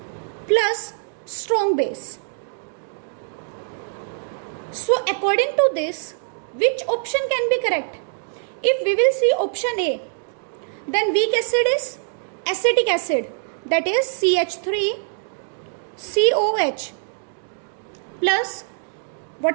plus strong base. So according to this, which option can be correct? If we will see option A, then weak acid is acetic acid, that is CH3COH plus,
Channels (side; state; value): left; silent; digital silence